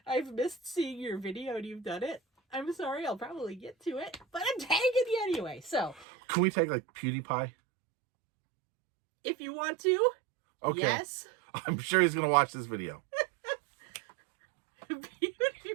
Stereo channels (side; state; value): left; drops out; at 6.1 s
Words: I've missed seeing your video and you've done it, I'm sorry, I'll probably get to it, but I'm tagging you anyway. So, can we tag like PewDiePie? If you want to, okay. Yes. I'm sure he's going to watch this video.